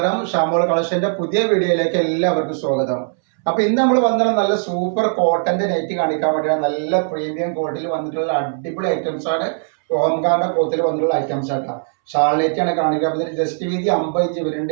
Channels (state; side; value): silent; left; 66 dB below the other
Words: ഷാമോൾ കളക്ഷന്റെ പുതിയ വീഡിയോയിലേക്ക് എല്ലാവർക്കും സ്വാഗതം. അപ്പൊ ഇന്ന് നമ്മൾ വന്നിട്ടുള്ള നല്ല സൂപ്പർ കോട്ടന്റെ നെറ്റ് കാണിക്കാൻ വേണ്ടിയാണ്. നല്ല പ്രീമിയം ക്വാളിറ്റിയിൽ വന്നിട്ടുള്ള അടിപൊളി ഐറ്റംസ് ആണ്. ഓംകാറിന്റെ കോത്തിൽ വന്നിട്ടുള്ള ഐറ്റംസ് ആട്ടാ. ഷാൾ നെറ്റ് ആണ് കാണിക്കുക. ജസ്റ്റ് വീതി 50 ഇഞ്ച്